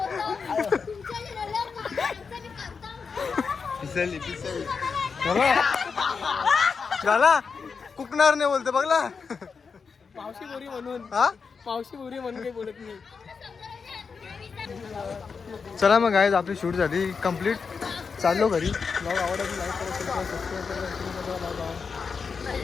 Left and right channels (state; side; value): quieter; right; 5.4 dB